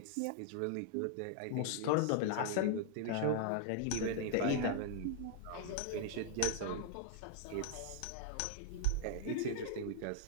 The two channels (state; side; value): different; both; correlation -0.01